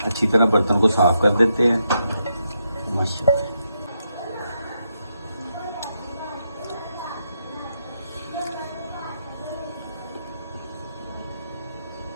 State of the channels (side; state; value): both; inverted; correlation -0.82